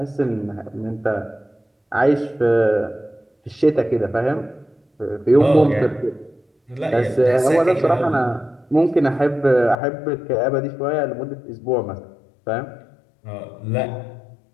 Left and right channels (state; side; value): drops out; right; at 9.8 s